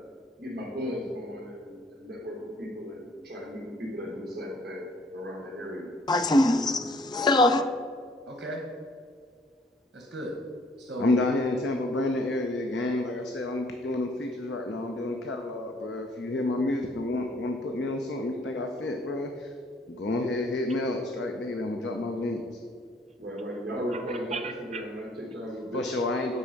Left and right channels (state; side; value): normal; both; correlation 0.60